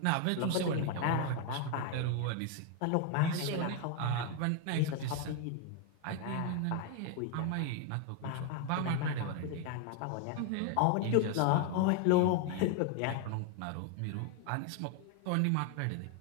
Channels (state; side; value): different; both; correlation 0.00